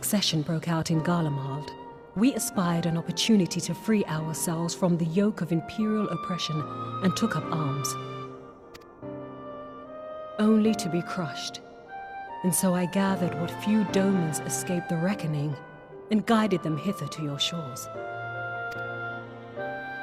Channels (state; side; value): identical; both; correlation 1.00